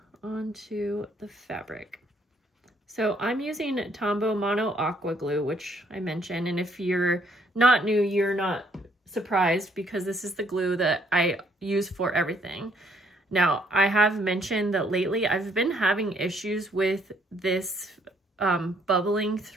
onto the fabric. So I'm using Tombow Mono Aqua Glue, which I mentioned, and if you're not new, you're not surprised because this is the glue that I use for everything. Now, I have mentioned that lately I've been having issues with this bubbling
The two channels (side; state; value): both; normal; correlation 0.67